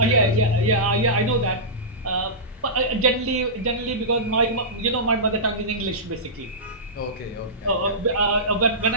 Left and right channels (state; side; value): normal; both; correlation -0.17